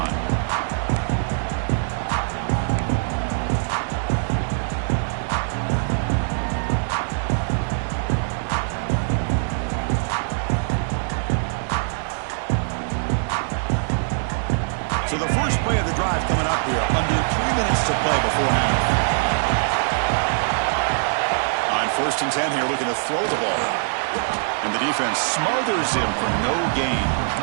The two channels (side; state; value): left; silent; digital silence